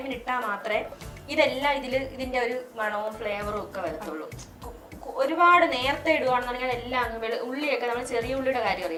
ഇട്ടാൽ മാത്രമേ ഇതെല്ലാം ഇതിന്റെ ഒരു മണവും ഫ്ലേവറും ഒക്കെ വരത്തുള്ളൂ. ഒരുപാട് നേരത്തെ ഇടുവാണെന്നുണ്ടെങ്കിൽ എല്ലാം അങ്ങ് ഉള്ളിയൊക്കെ നമ്മൾ ചെറിയ ഉള്ളിയുടെ കാര്യം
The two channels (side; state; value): both; identical; correlation 1.00